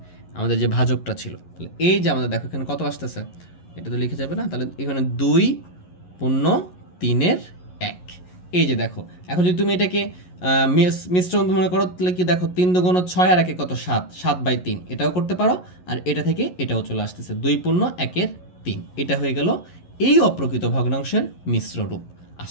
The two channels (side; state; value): right; late; 11 ms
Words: আমাদের যে ভাজকটা ছিল। তাহলে এই যে আমাদের দেখো এখানে কত আসতেছে, এটা তো লিখে যাবে না, তাহলে এখানে 2 পূর্ণ 3-এর 1। এই যে দেখো এখন যদি তুমি এটাকে মিশ্রণ মনে করো, তাহলে কি দেখো 3 দুগুণ 6 আর 1 কত 7, 7/3 এটাও করতে পারো, আর এটা থেকে এটাও চলে আসতেছে 2 পূর্ণ 1-এর 3, এটা হয়ে গেল এই অপ্রকৃত ভগ্নাংশের মিশ্র রূপ।